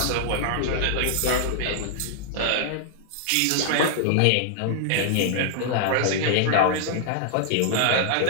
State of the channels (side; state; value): both; different; correlation -0.01